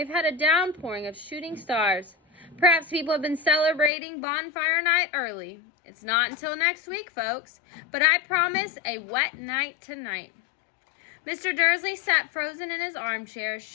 had a downpouring of shooting stars. Perhaps people have been celebrating bonfire night early. It's not until next week, folks, but I promise a wet night tonight. Mr. Dursley sat frozen in his armchair,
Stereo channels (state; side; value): drops out; right; at 3.9 s